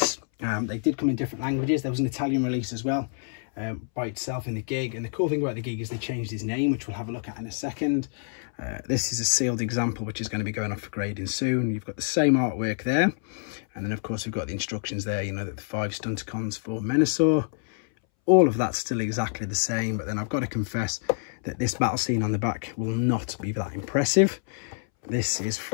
They did come in different languages. There was an Italian release as well, by itself in the gig, and the cool thing about the gig is they changed his name, which we'll have a look at in a second. This is a sealed example which is going to be going off for grading soon. You've got the same artwork there, and then of course we've got the instructions there, you know, that the 5 stunticons for Menasor. All of that's still exactly the same, but then I've got to confess that this battle scene on the back will not be that impressive. This is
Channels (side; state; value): right; silent; 60 dB below the other